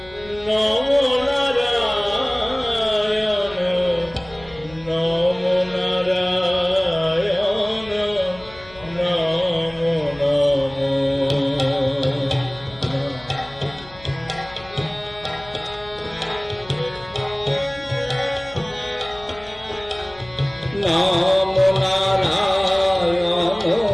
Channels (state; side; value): noise; left; hum, 22 dB below the sound